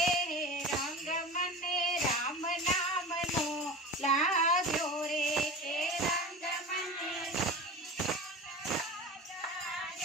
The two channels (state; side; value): normal; both; correlation 0.32